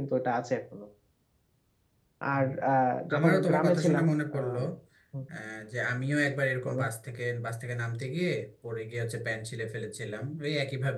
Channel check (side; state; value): both; identical; correlation 1.00